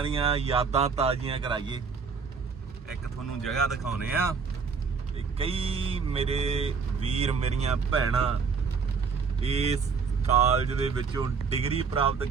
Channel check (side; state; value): left; quieter; 5.5 dB